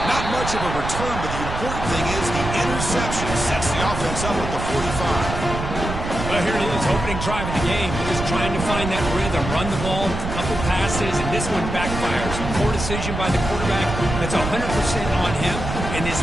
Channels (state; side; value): noise; right; rumble, 5 dB below the sound